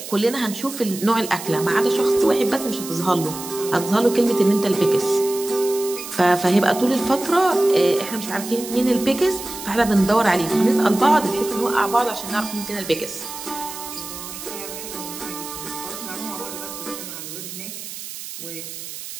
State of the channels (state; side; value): noise; right; hiss, 10 dB below the sound